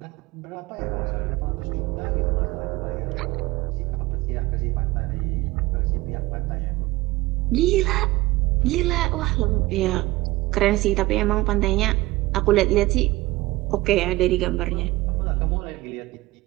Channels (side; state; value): left; quieter; 19.6 dB